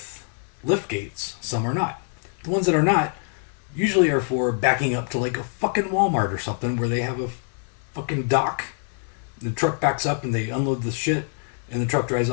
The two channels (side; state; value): right; silent; 61 dB below the other